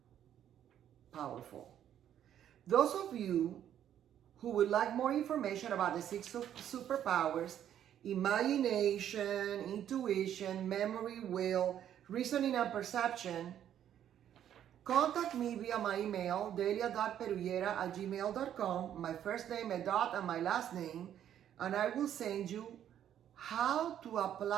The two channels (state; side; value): quieter; left; 10.4 dB